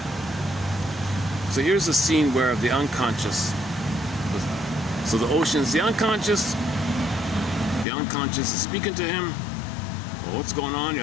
So here's a scene where the unconscious, so the ocean's the unconscious is speaking to him. Well, what's going on here?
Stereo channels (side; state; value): right; drops out; at 7.9 s